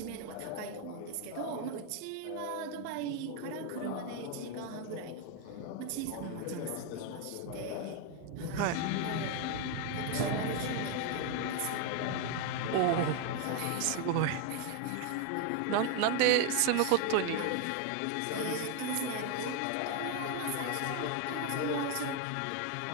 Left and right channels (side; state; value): both; different; correlation 0.01